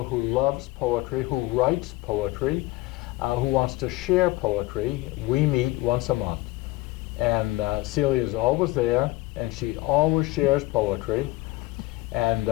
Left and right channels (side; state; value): right; quieter; 19.4 dB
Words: who loves poetry, who writes poetry, who wants to share poetry, we meet once a month. And Celia is always there, and she always shares poetry. And